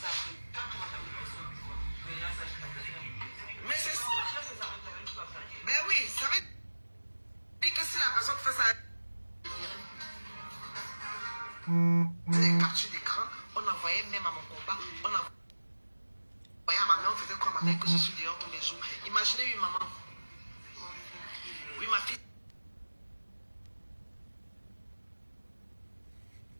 sachent que quand tu vas une personne du choix, les gens sachent que la personne Mais c'est ça. Mais oui, ça veut dire que si la personne fait ça, les captures d'écran, on envoyait même à mon combat, on envoyait à ma mère, on faisait quoi à ma mère que je suis dehors tous les jours. Imaginez une maman. Oui, ma fille.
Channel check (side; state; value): both; inverted; correlation -1.00